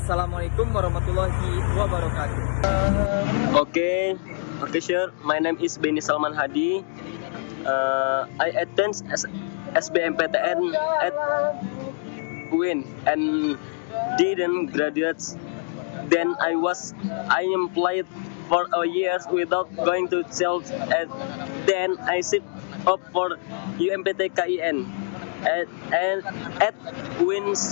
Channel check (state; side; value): silent; right; digital silence